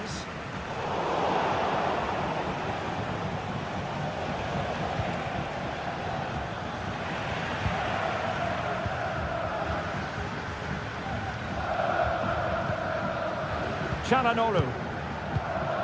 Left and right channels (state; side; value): identical; both; correlation 1.00